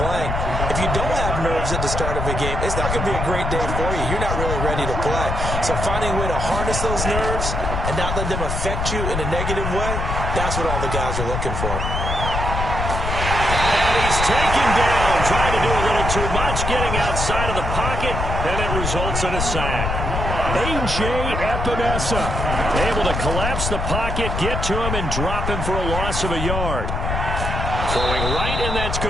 if you don't have nerves at the start of a game, it's not going to be a great day for you. You're not really ready to play. So finding a way to harness those nerves and not let them affect you in a negative way, that's what all the guys are looking for. He's taken down, trying to do a little too much, getting outside of the pocket, and it results in a sack. A.J. Epinesa Able to collapse the pocket, get to him, and drop him for a loss of a yard. Throwing right, and that's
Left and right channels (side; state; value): left; noise; rumble, 2 dB below the sound